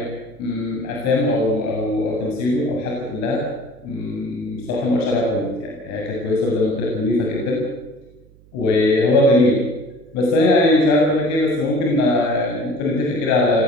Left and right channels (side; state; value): right; noise; hum, 27 dB below the sound